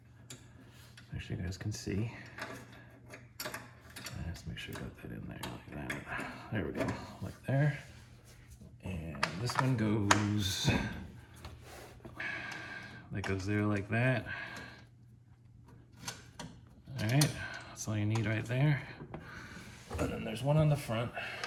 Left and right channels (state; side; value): identical; both; correlation 1.00